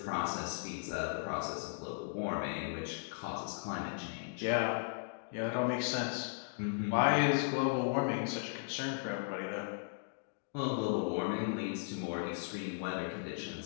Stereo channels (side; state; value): right; silent; digital silence